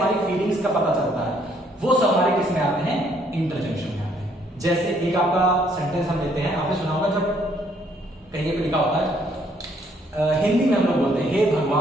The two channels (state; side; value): normal; both; correlation 0.66